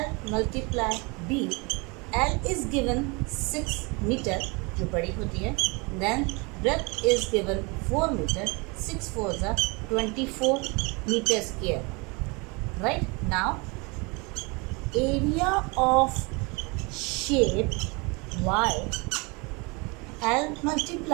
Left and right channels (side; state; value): left; quieter; 28.6 dB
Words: multiply b. L is given 6 metre जो बड़ी होती है. Then breadth is given 4 metre. 6 4 ज़ा 24 metre square. Right. Now area of shape y. L